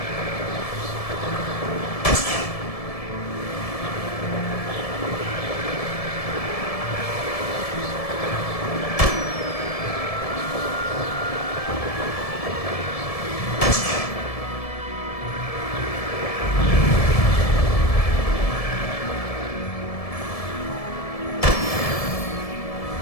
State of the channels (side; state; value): right; late; 1.7 ms